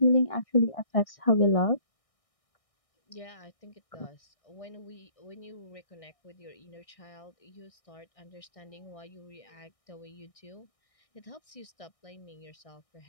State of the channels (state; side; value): late; right; 1.6 ms